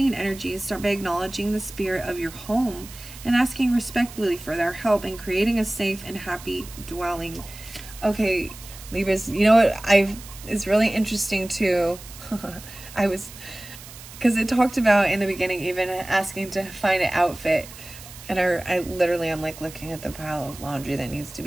energies. Start by acknowledging the spirit of your home and asking respectfully for their help in creating a safe and happy dwelling. Okay, Libras, you know what? It's really interesting too. Because it talked about in the beginning even asking to find an outfit, and I literally am like looking at the pile of laundry that needs to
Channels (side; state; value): right; noise; hiss, 16 dB below the sound